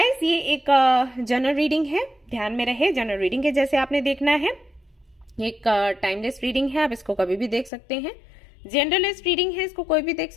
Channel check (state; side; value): drops out; right; at 7.7 s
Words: ये एक जनरल रीडिंग है, ध्यान में रहे। जनरल रीडिंग है जैसे आपने देखना है। एक टाइमलेस रीडिंग है, आप इसको कभी भी देख सकते हैं। जनरलिस्ट रीडिंग है, इसको कोई भी देख